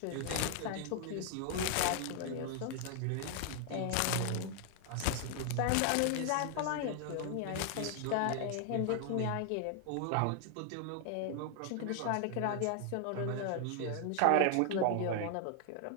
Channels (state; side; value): different; both; correlation 0.00